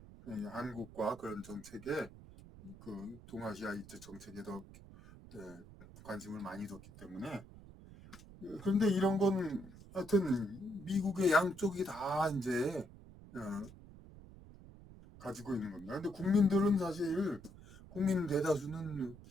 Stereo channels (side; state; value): right; noise; rumble, 18 dB below the sound